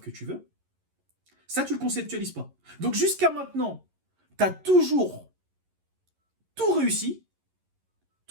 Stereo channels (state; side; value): late; left; 11 ms